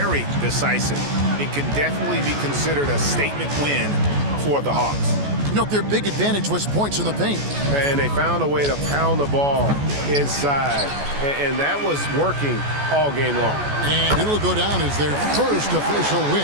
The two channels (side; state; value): left; late; 14 ms